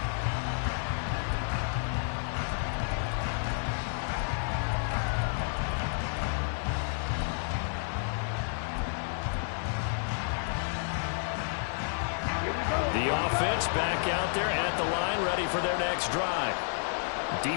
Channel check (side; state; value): right; silent; digital silence